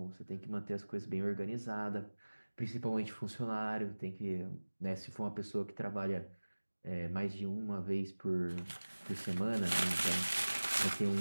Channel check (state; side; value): inverted; both; correlation -1.00